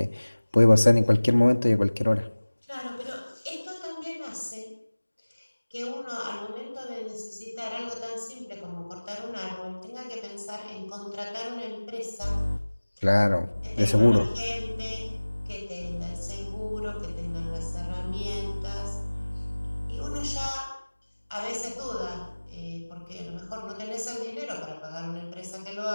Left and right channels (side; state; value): both; inverted; correlation -1.00